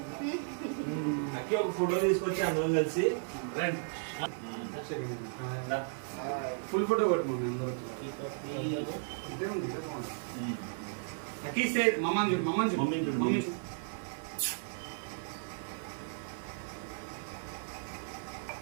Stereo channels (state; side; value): silent; left; 55 dB below the other